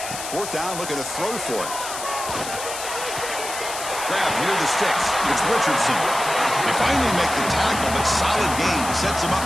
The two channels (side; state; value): left; noise; hiss, 8 dB below the sound